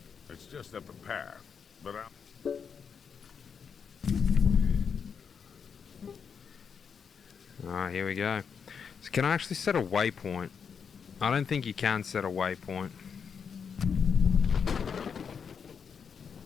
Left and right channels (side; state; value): right; quieter; 6.5 dB